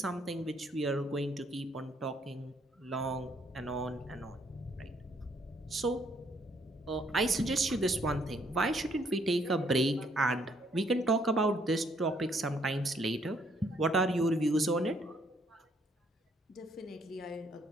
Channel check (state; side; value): normal; both; correlation 0.68